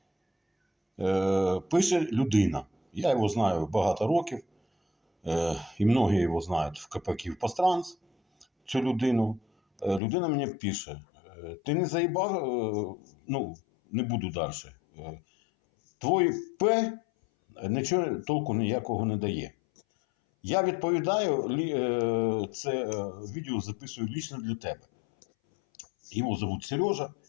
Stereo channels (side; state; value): right; drops out; at 10.0 s